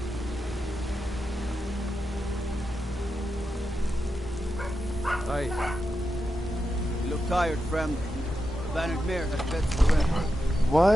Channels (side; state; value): both; normal; correlation 0.88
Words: Aye. You look tired, friend. The bannered mare has fed to the red.